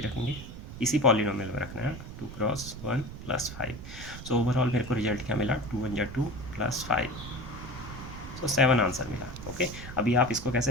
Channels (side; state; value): right; noise; rumble, 11 dB below the sound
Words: रखेंगे, इसी पॉलिनोमियल में रखना है, 2 × 1 + 5। सो ओवरऑल मेरे को रिजल्ट क्या मिला, 2 × 2 + 5, तो 7 आंसर मिला। ओके, अभी आप इसको